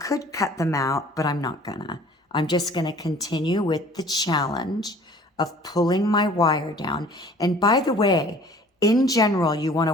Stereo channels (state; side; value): normal; both; correlation 0.51